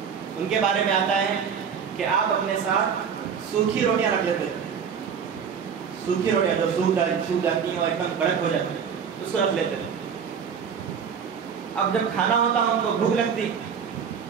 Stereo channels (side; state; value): left; quieter; 7.0 dB